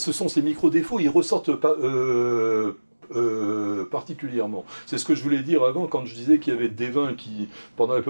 sont ces micro-défauts, ils ressortent pas particulièrement. C'est ce que je voulais dire avant quand je disais qu'il y avait des vins qui, pendant la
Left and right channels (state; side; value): inverted; both; correlation -1.00